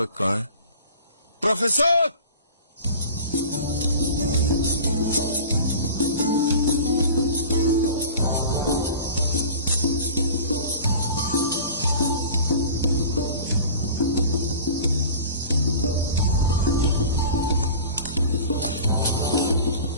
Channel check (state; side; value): inverted; both; correlation -0.39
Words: कहाँ है? प्रोफेसर!